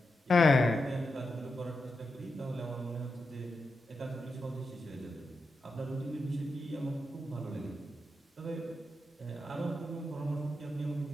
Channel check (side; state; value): both; normal; correlation 0.87